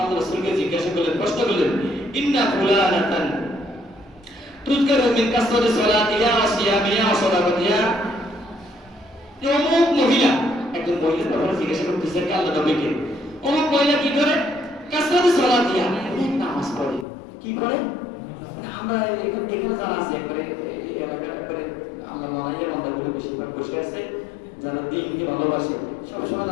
আল্লাহ রাসূলকে জিজ্ঞাসা করলেন, প্রশ্ন করলেন, ইন্না ফুলানাতান তুযকারু মিন কাসরাতি সালাতিহা ওয়া সিয়ামিহা ওয়া সাদাকাতিহা। অমুক মহিলা, একজন মহিলার ব্যাপারে জিজ্ঞাসা করতেছে আল্লাহ নবীকে, অমুক মহিলা কি করে? কাসরাতি সালাতিহা, অনেক নামাজ পড়ে। কি পড়ে? আমরা এখানে যারা আছে একবারে এই এলাকার একবারে আমরা মনে বান্দাগুলো বেশিরভাগ বসে আছে যারা দিনকে ভালোবাসে, সবসময়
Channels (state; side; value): drops out; right; at 17.1 s